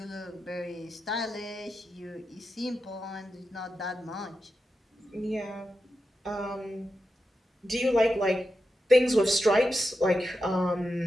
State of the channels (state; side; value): normal; both; correlation 0.89